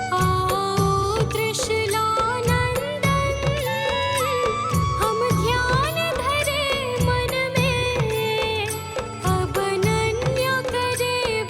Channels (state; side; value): identical; both; correlation 1.00